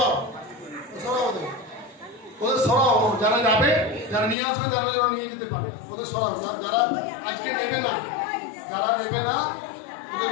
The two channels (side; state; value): right; drops out; at 4.4 s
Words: ওদের সরাও, যারা যাবে, যারা নিয়ে আসবে তারা যেন নিয়ে যেতে পারে, ওদের সরাও। যারা আজকে নেবে না, ওদের